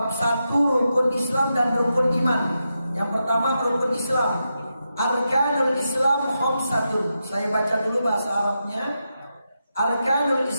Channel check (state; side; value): inverted; both; correlation -0.87